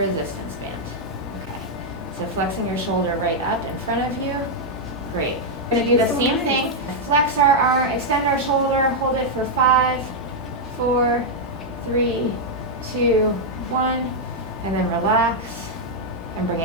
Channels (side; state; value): both; normal; correlation -0.02